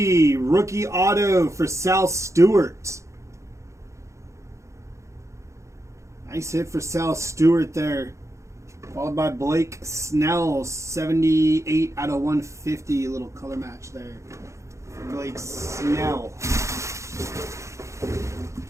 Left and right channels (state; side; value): late; left; 0.14 ms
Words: Rookie auto for Sal Stewart. Nice hit for Sal Stewart there. Followed by Blake Snell, 78 out of 150. Little color match there. Blake Snell.